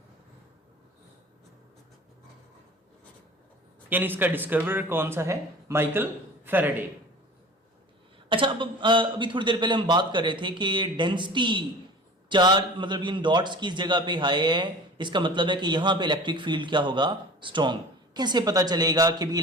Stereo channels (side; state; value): both; normal; correlation 0.40